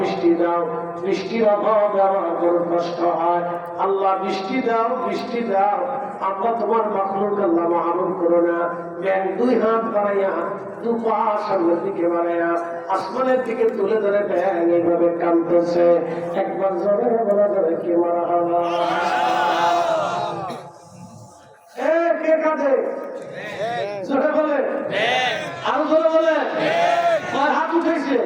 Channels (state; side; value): identical; both; correlation 1.00